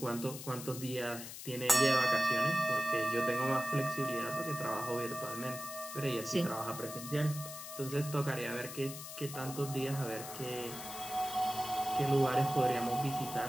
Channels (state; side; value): noise; left; hiss, 10 dB below the sound